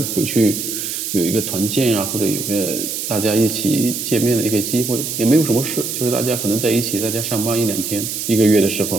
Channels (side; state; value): right; noise; hiss, 4 dB below the sound